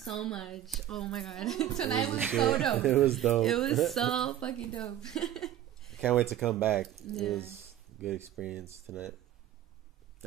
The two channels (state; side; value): quieter; left; 12.0 dB